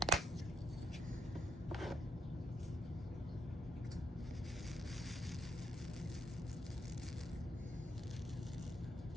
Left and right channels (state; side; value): normal; both; correlation 0.76